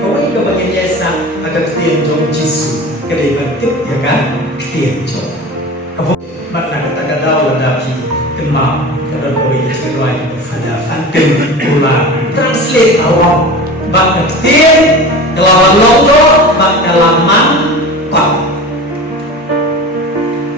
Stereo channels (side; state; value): both; normal; correlation 0.33